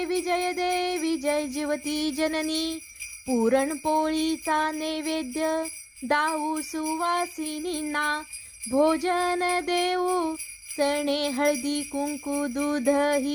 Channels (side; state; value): both; identical; correlation 1.00